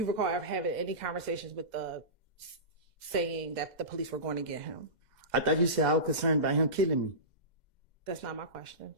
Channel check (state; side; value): late; left; 2.0 ms